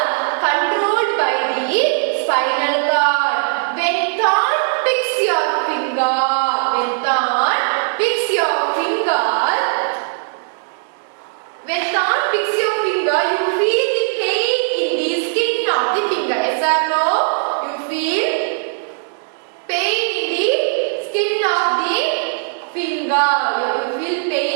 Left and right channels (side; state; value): left; silent; 64 dB below the other